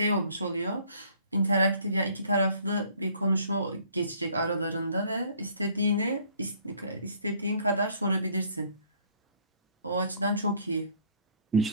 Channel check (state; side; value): inverted; both; correlation -0.58